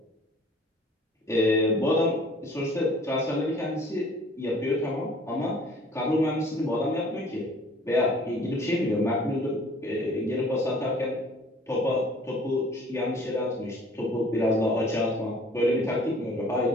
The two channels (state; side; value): normal; both; correlation 0.52